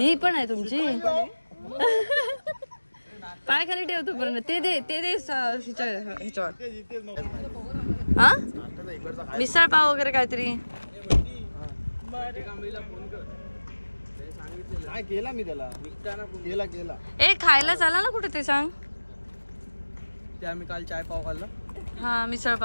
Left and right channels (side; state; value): both; inverted; correlation -1.00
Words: पण आहे तुमची. पाय खाली ठेवतो पर्यंत ते दे ह्याच्यावर. हा मिसळ पाव वगैरे काहीतरी. काय केला मी त्याला केला ए खायला चाला ना कुठे ते सांग. ते आम्ही काल चाय पाव खाल्ला. हा मिसळ